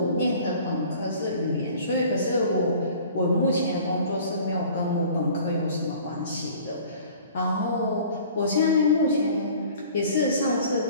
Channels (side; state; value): both; inverted; correlation -0.48